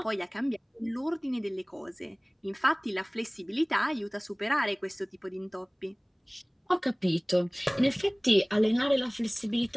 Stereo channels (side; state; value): both; identical; correlation 1.00